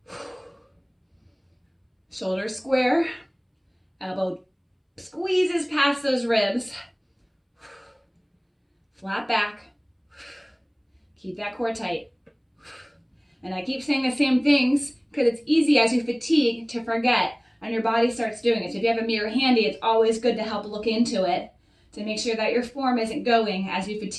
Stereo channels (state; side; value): identical; both; correlation 1.00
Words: Shoulders square. Elbow squeezes past those ribs. Flat back. Keep that core tight. And I keep saying the same things because it's easy as you fatigue to forget and your body starts doing it. So if you have a mirror handy, it's always good to help look into it to make sure that your form isn't going as you